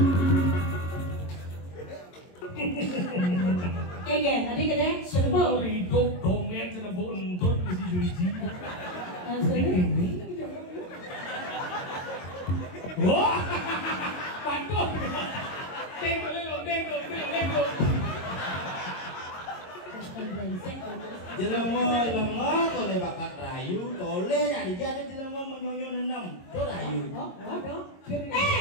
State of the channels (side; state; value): right; late; 22 ms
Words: Keken, tadi kene serba. Hidup komen sana bontot mesti juji. Wah, pantun. Tengok lelo. Jelema kole bakat rayu, tole nyari jadi jelema menyonyo nenam. To rayu. Oh,